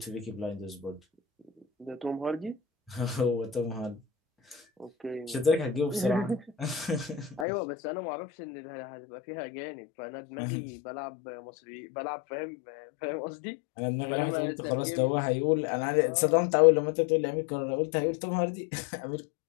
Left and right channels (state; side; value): drops out; right; at 7.5 s